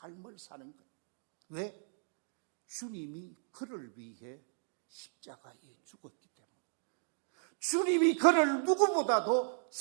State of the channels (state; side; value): silent; left; digital silence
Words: 사는 것. 왜? 주님이 그를 위해 십자가에 죽었기 때문에, 주님이 그를 누구보다도